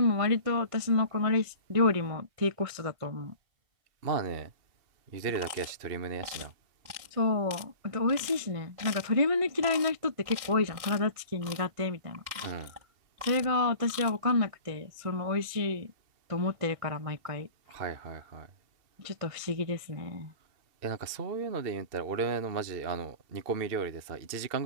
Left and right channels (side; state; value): left; late; 1.6 ms